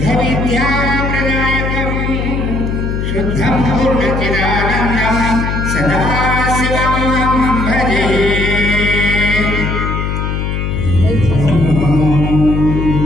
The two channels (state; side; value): noise; left; hum, 2 dB below the sound